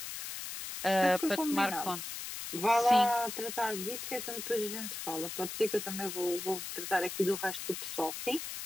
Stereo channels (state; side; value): noise; left; hiss, 7 dB below the sound